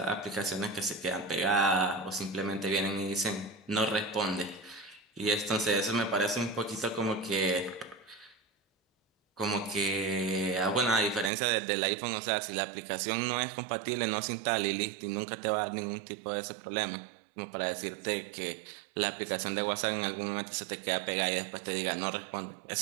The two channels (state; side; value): drops out; left; at 11.3 s